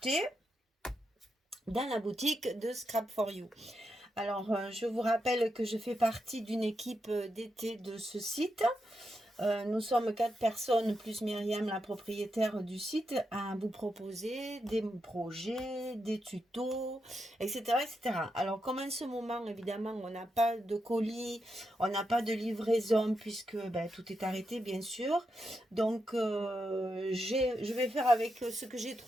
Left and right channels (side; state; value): both; normal; correlation 0.85